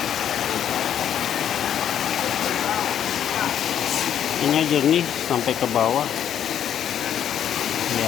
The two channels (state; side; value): quieter; right; 9.7 dB